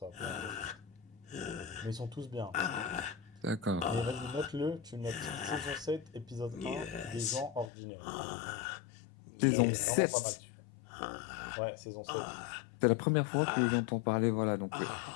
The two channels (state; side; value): drops out; right; at 7.7 s